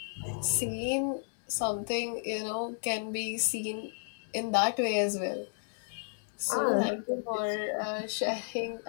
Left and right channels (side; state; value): right; silent; digital silence